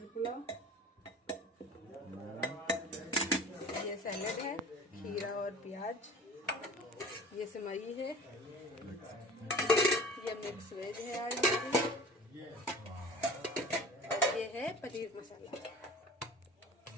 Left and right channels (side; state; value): both; normal; correlation 0.41